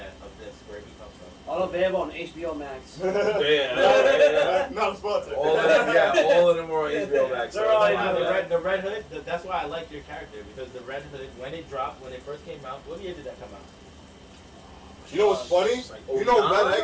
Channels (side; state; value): both; identical; correlation 1.00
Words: of this where he comes from. All available on HBO Max. Yeah. Not a sponsor. All of them were on HBO Max. They're all The Red Hood. That's why I like your character because the Red Hood when it first came out. What year did that come out? You know what's funny? Like You know 09, Red